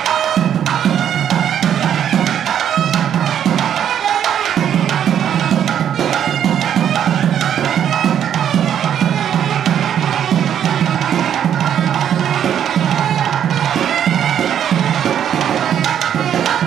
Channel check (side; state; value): left; quieter; 9.5 dB